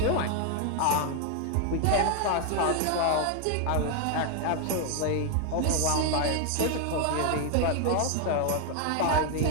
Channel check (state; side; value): different; both; correlation 0.01